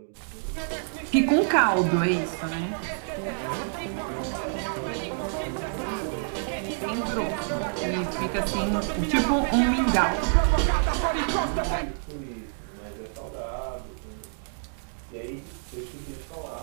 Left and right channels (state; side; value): silent; left; digital silence